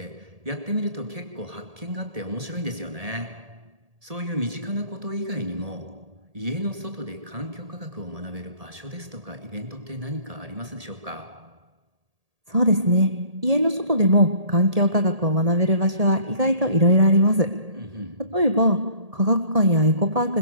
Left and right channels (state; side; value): late; left; 1.8 ms